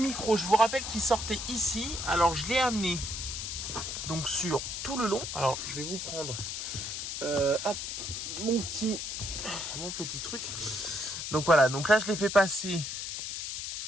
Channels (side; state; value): left; noise; hiss, 5 dB below the sound